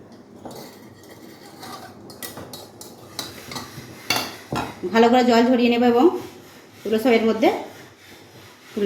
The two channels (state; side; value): identical; both; correlation 1.00